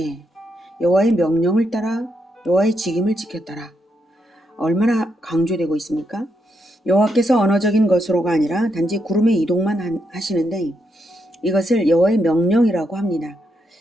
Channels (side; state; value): both; normal; correlation 0.80